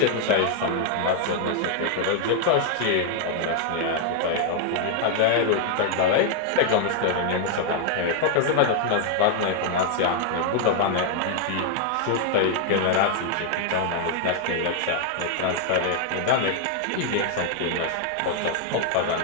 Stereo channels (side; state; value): both; different; correlation 0.00